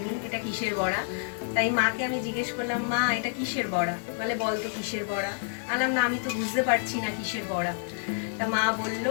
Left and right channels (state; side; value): silent; right; digital silence